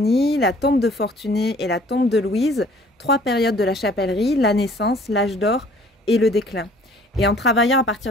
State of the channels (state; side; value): normal; both; correlation 0.54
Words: la tombe de Fortuné et la tombe de Louise, 3 périodes de la chapellerie: la naissance, l'âge d'or et le déclin. Et en travaillant à